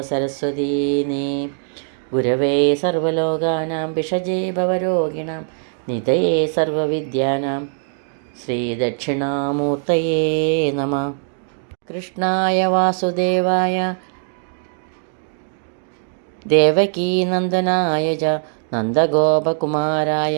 സരസ്വതീ നീ. ഗുരവേ സർവലോകാനാം ഭിഷജേ ഭവരോഗിണാം നിധയേ സർവവിദ്യാനാം ശ്രീദക്ഷിണാമൂർത്തയേ നമഃ. കൃഷ്ണായ വാസുദേവായ ദേവകീനന്ദനായ ച നന്ദഗോപകുമാരായ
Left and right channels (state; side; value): silent; left; digital silence